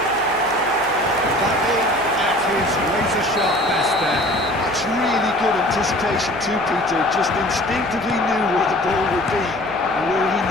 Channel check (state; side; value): noise; left; hum, 23 dB below the sound